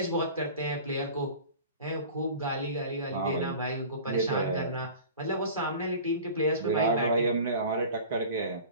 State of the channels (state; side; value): inverted; both; correlation -0.39